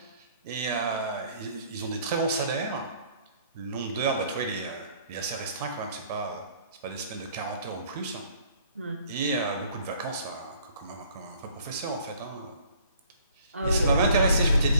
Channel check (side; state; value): both; inverted; correlation -0.58